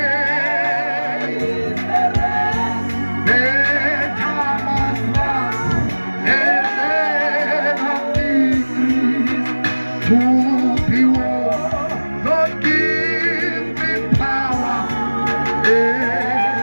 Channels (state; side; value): inverted; both; correlation -1.00